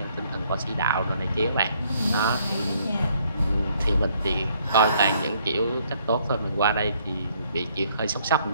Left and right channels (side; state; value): both; inverted; correlation -0.67